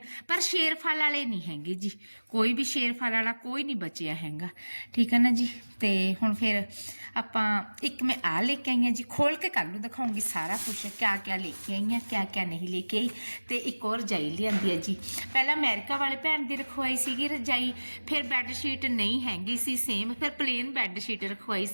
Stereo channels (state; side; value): inverted; both; correlation -1.00